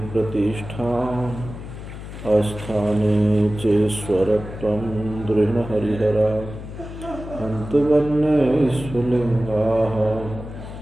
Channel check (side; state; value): left; noise; hum, 11 dB below the sound